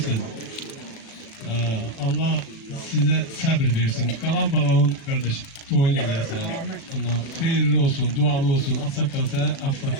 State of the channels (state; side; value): late; right; 36 ms